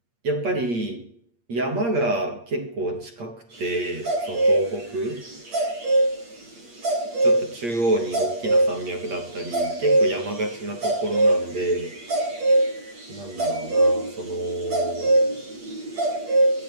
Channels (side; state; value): left; late; 8.5 ms